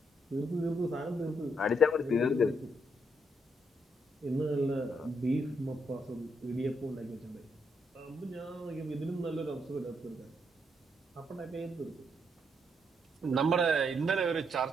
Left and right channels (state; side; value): normal; both; correlation 0.76